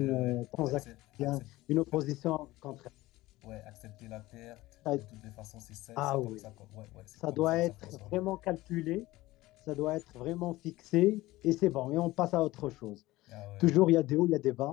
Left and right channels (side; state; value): right; quieter; 18.3 dB